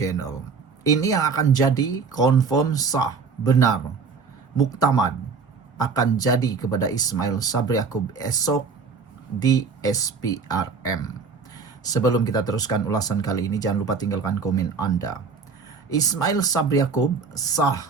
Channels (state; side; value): quieter; left; 5.0 dB